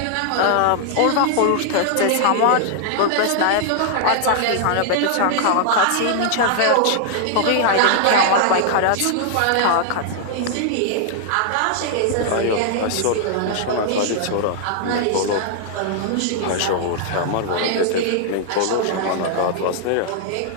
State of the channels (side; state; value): both; different; correlation -0.01